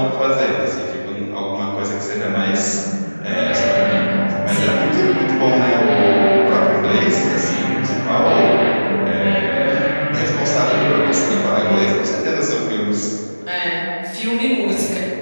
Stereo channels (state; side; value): inverted; both; correlation -1.00